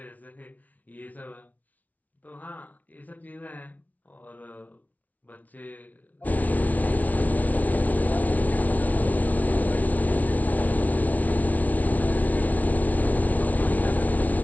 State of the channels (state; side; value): late; right; 0.073 ms